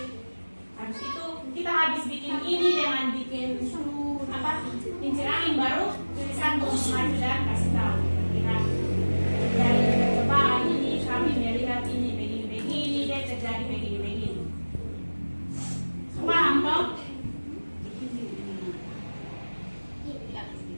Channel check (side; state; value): both; inverted; correlation -1.00